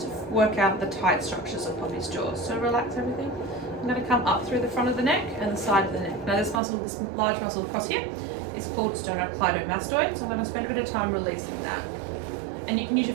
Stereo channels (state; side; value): drops out; left; at 6.6 s